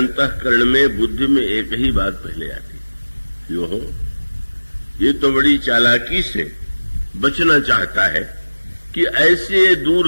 में, बुद्धि में एक ही बात पहले आती, यो हो ये तो बड़ी चालाकी से बचना चाहता है कि ऐसे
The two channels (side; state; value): both; inverted; correlation -1.00